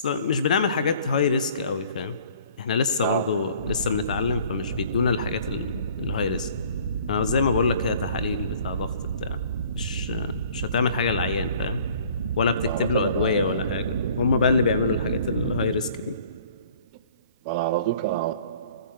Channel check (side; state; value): both; inverted; correlation -0.53